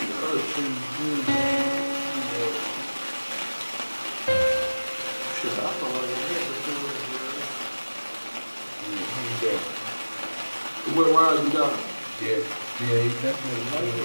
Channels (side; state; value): both; inverted; correlation -1.00